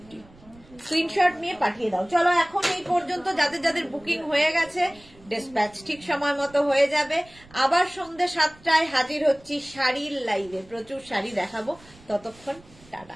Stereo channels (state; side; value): noise; right; rumble, 25 dB below the sound